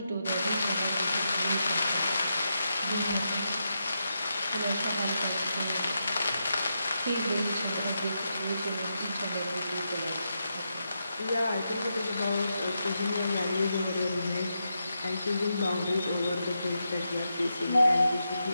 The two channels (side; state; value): both; inverted; correlation -0.86